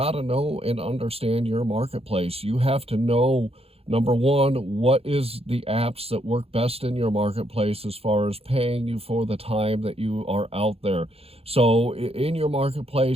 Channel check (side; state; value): left; late; 0.29 ms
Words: to know and understand your marketplace. You have to know, number one, what is the apps that work best in your marketplace as far as paying you for the time that you are out there. So in your